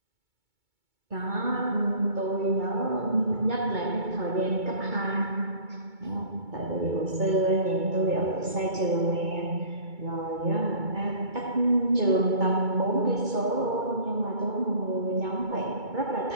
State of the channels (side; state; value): left; late; 2.2 ms